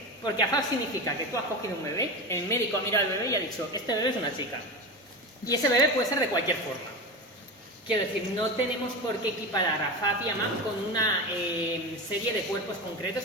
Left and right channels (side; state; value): both; normal; correlation 0.22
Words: Porque AFAP significa que tú has cogido un bebé, el médico ha mirado al bebé y ha dicho, este bebé es una chica. Y ese bebé puede ser de cualquier forma. Quiero decir, no tenemos por qué equiparar a AFAP y a MAP con una serie de cuerpos concretos